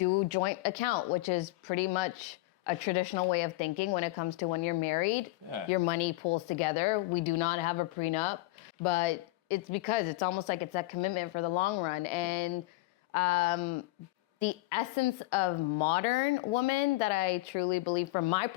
joint account, which is pretty much a traditional way of thinking when it comes to when you're married. Yeah. Your money pools together. We do not have a prenup, but it's because it's almost like it's a commitment for the long run. And the essence of modern woman that I truly believe, from my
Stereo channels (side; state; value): right; quieter; 19.6 dB